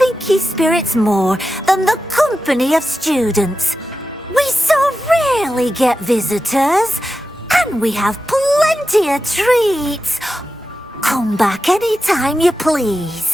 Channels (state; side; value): normal; both; correlation 0.91